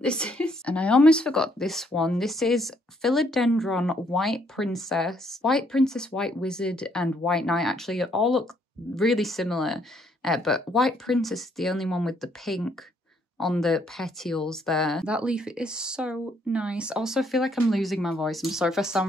this is. And I almost forgot this one. This is Philodendron White Princess, White Wizard, and White Knight. Actually, all look really similar, but White Princess is the only one with the pink on the petioles there. That leaf is so nice. Also, I feel like I'm losing my voice. I'm sorry if I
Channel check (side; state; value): both; normal; correlation 0.69